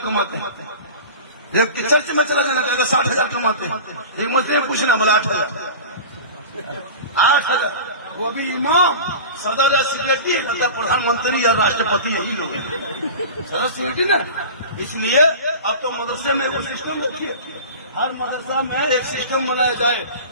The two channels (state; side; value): inverted; both; correlation -0.34